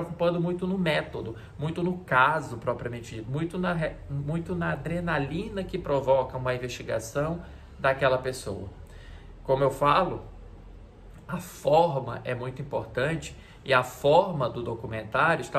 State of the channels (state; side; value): identical; both; correlation 1.00